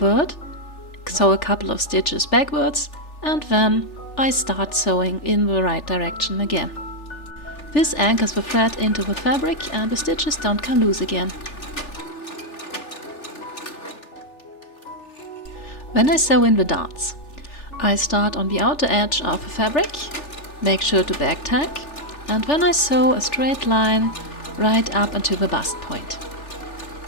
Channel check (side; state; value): right; late; 3.4 ms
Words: sew a couple of stitches backwards, and then I start sewing in the right direction again. This anchors the thread into the fabric and the stitches don't come loose again. When I sew in the darts, I start on the outer edge of the fabric, make sure to back tack, and then I sew a straight line right up until the bust point.